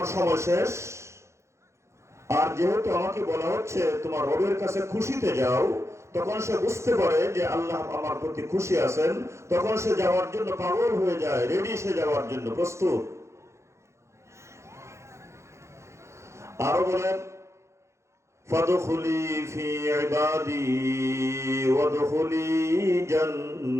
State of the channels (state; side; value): late; left; 0.14 ms